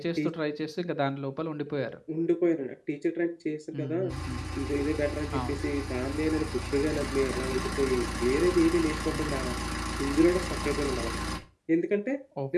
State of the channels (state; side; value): identical; both; correlation 1.00